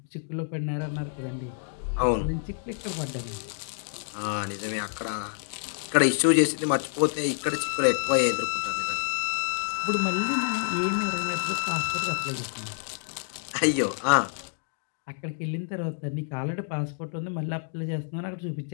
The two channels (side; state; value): right; silent; digital silence